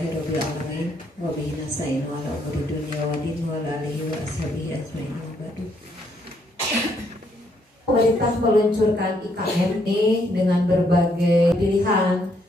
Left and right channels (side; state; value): both; normal; correlation 0.72